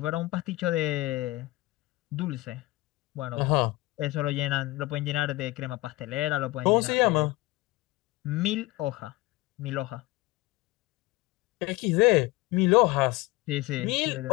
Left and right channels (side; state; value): right; quieter; 20.5 dB